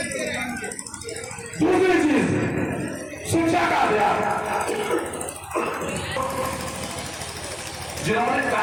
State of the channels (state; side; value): identical; both; correlation 1.00